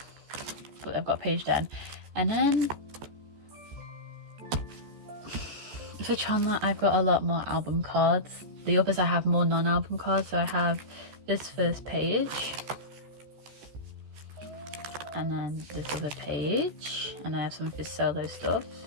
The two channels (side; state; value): left; late; 14 ms